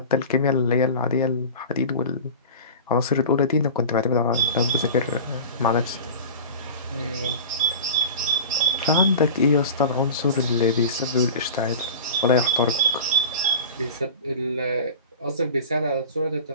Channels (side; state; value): both; inverted; correlation -0.34